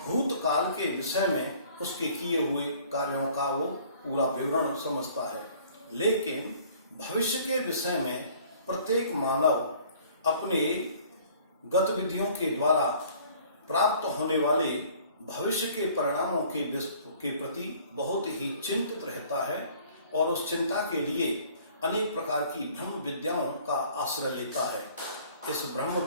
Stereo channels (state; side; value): inverted; both; correlation -0.54